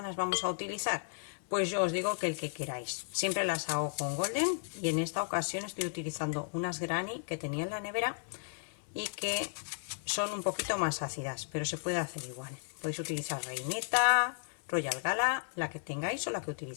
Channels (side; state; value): right; silent; 55 dB below the other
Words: vamos a utilizar? Pues yo os digo que el que queráis. Siempre las hago con golden y en esta ocasión estoy utilizando unas granny que tenía en la nevera y que son un poquito más ácidas, pero se puede hacer igual. Podéis utilizar reineta, Royal Gala, la que tengáis o la que